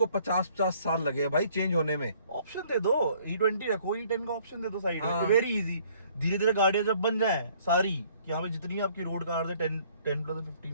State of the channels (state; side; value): inverted; both; correlation -0.60